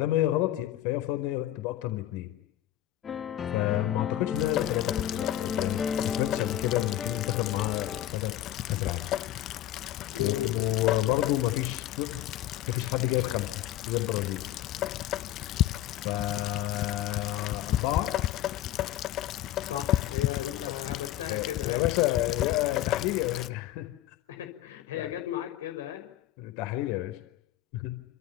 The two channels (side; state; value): right; quieter; 13.3 dB